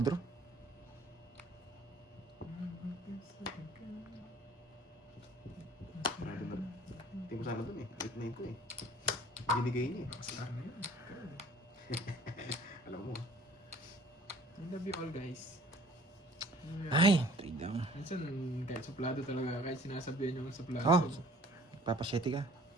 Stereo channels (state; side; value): normal; both; correlation 0.53